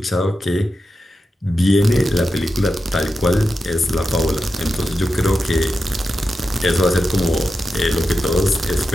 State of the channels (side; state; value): both; normal; correlation 0.90